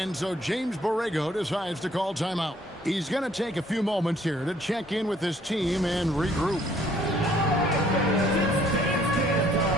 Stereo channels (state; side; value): normal; both; correlation 0.62